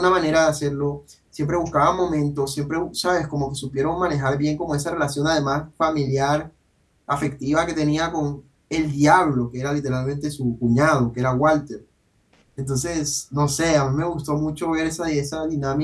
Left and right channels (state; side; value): identical; both; correlation 1.00